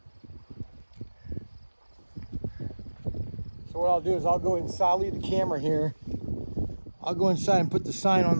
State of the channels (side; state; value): both; inverted; correlation -1.00